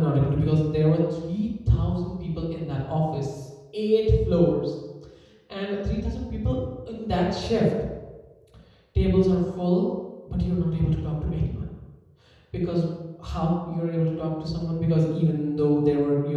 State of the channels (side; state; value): both; identical; correlation 1.00